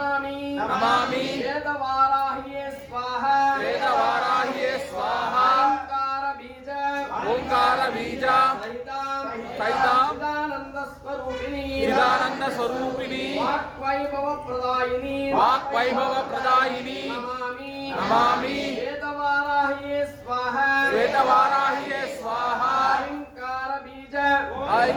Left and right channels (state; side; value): identical; both; correlation 1.00